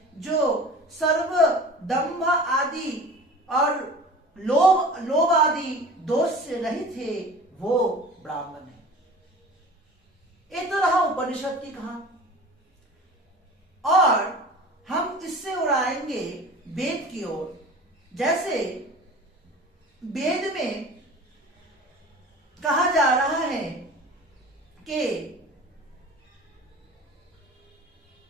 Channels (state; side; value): normal; both; correlation 0.40